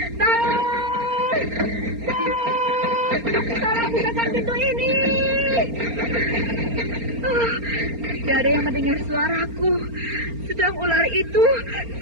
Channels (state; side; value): late; left; 4.3 ms